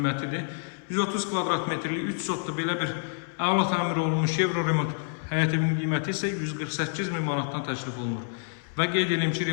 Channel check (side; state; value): right; silent; 59 dB below the other